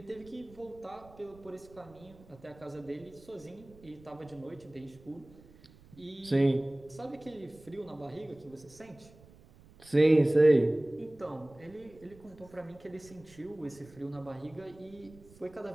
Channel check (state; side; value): noise; right; rumble, 23 dB below the sound